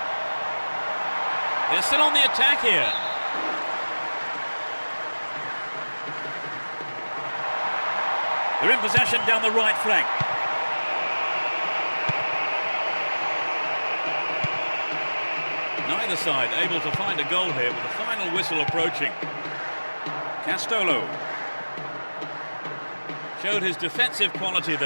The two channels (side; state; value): both; inverted; correlation -1.00